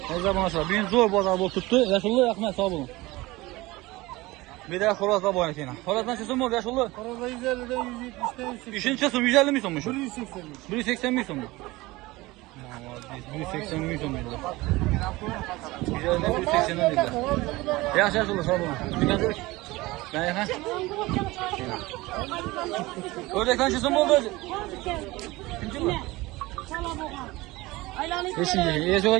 Ne zaman aşağı? Bugün zor bu azabı tuttu. Yaşullu yakmaya sağ olun. Bir daha Horaz'la bu oynatayım. Horaz'dan çözüm oldu yaşullu. Arada 150'den 170'ten 180. İşin çözüm 150 mi sonmuş? 180'miş. 180 mi sonmuş? 180 mi sonmuş? 150'den 180'den dediler. Yaş yaşullu sağ olun. Dikkat et. Ben yakın. Ördekten çözüm oldu. Kimci mi? Beşinci. İyi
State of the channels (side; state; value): left; quieter; 20.6 dB